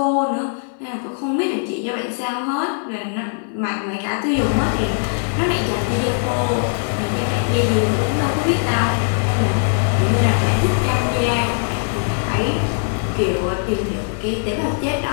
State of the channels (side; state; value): right; silent; 59 dB below the other